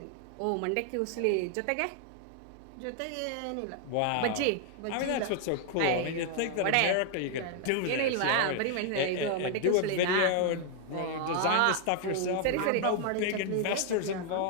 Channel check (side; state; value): both; different; correlation 0.00